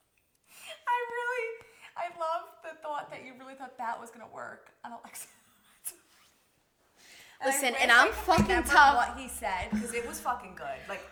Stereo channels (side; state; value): both; identical; correlation 1.00